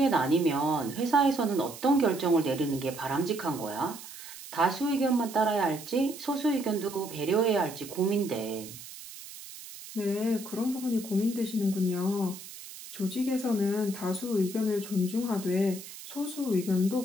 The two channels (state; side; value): noise; right; hiss, 14 dB below the sound